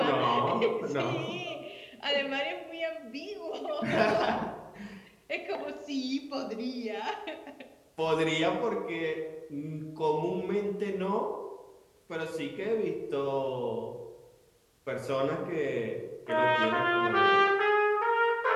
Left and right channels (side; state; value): both; identical; correlation 1.00